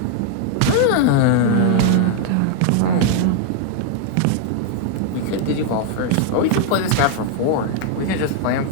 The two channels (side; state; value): both; different; correlation 0.00